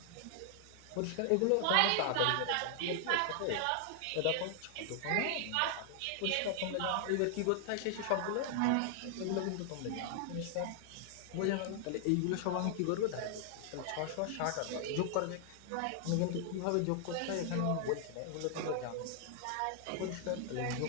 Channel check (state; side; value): different; both; correlation 0.00